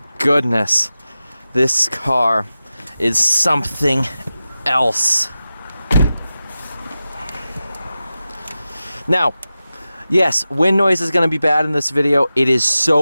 goodness. This car is something else. Now, yes, wind noise is going to be bad in this video. It is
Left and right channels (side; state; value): both; inverted; correlation -0.93